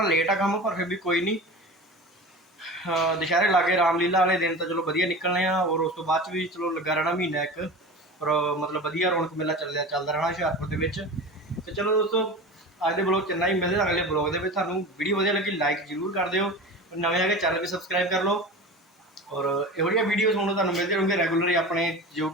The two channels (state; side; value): normal; both; correlation 0.32